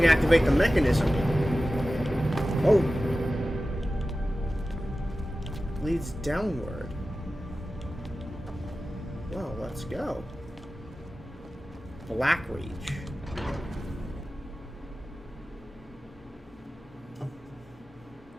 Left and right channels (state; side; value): normal; both; correlation 0.95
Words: activate the mechanism. Oh. Leads downward. Well, let's go. Blackreach.